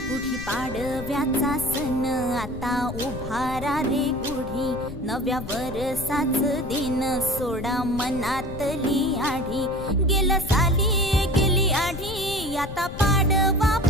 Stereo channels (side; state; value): left; noise; rumble, 10 dB below the sound